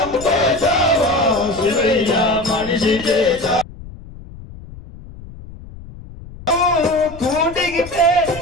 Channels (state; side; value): noise; left; rumble, 16 dB below the sound